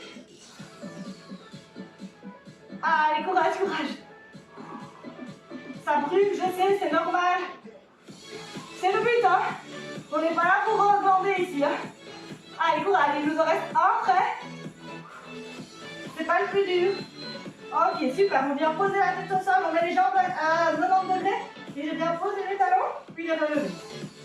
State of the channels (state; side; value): identical; both; correlation 1.00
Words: Allez, courage, courage. Ça brûle, je sais, c'est normal. C'est le but, hein. On n'est pas là pour glander ici, hein. Allez, courage, il nous en reste un prêt. C'est pas le plus dur. Ok, super, on vient poser la tête au sol, on met les jambes à 90 degrés. Et je viens poser les talons, puis les relever.